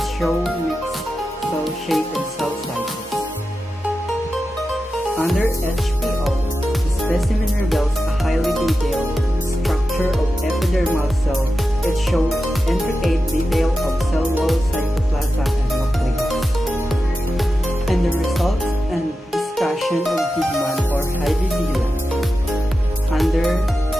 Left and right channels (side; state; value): both; normal; correlation 0.92